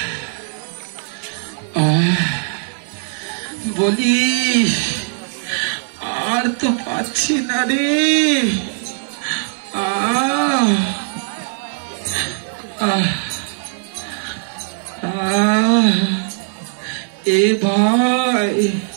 বলি আর তো পাচ্ছি না রে। এ ভাই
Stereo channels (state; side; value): silent; left; digital silence